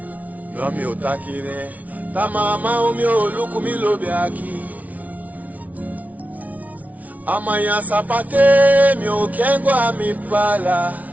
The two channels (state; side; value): late; left; 0.071 ms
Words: No mi otakire Ta mama umi oluku mi lobe aki Amaya sapate mi okengwa mi pala